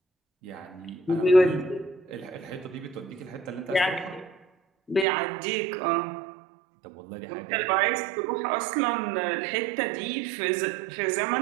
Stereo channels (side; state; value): left; drops out; at 5.1 s